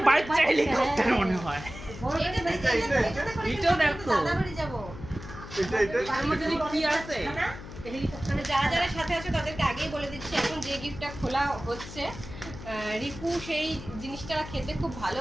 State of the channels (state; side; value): noise; left; hum, 13 dB below the sound